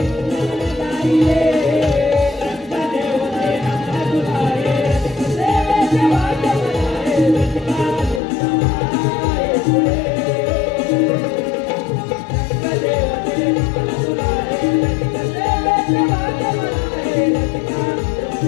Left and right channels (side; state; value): right; drops out; at 8.2 s